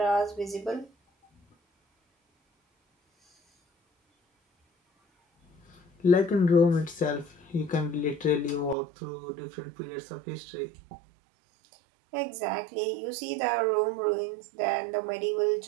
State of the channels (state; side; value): drops out; left; at 8.8 s